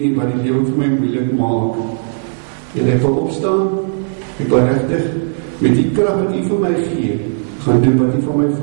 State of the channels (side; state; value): left; silent; 61 dB below the other